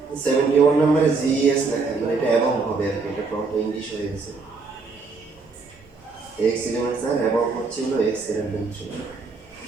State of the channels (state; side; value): quieter; left; 4.3 dB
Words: হচ্ছে 71 নম্বরে জিএস লেখা, মানে এটা এবং হবে আর কি, এটা ফ্রন্ট ইংলিশ হয়ে গেছে। এক্স এলিমেন্ট স্যার এবং হচ্ছে হলো এক্স এলিমেন্ট ছিল।